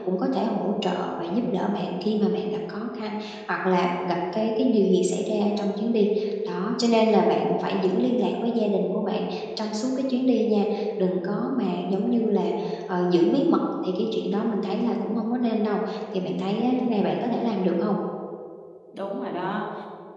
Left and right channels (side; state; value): both; identical; correlation 1.00